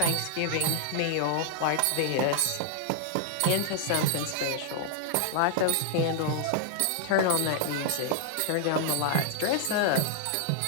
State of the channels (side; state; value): both; different; correlation 0.00